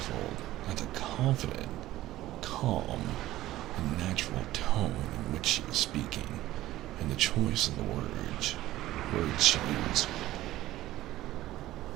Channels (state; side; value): quieter; left; 15.5 dB